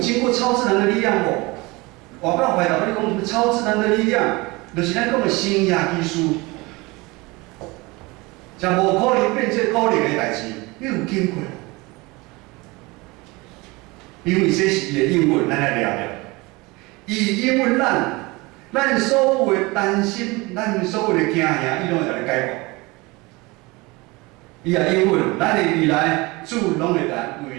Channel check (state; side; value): quieter; left; 23.8 dB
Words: 过超自然的力量无？我告回答你讲什么超自然的力量，就是咱讲的新约基书，将无可能变做可能的代志，你有经过。因为这是伊的应允，咱来聊聊。伊应允咱所有的担心，咱所有的惊吓，伊拢会甲你解决。伊也应允，咱的未来主拢会来为